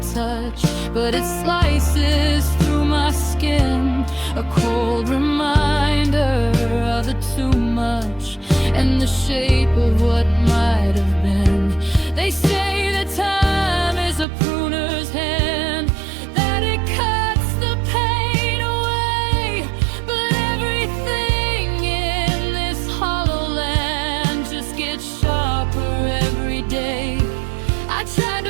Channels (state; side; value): drops out; left; at 14.2 s